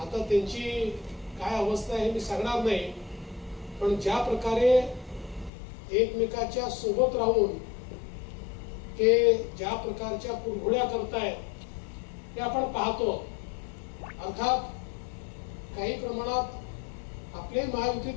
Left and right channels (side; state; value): right; drops out; at 5.5 s